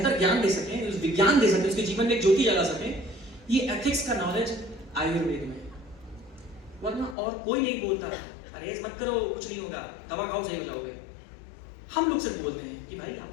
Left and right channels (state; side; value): drops out; right; at 7.2 s